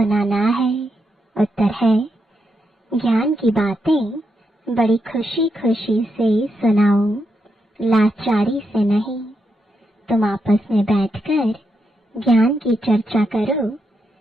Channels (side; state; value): both; normal; correlation 0.83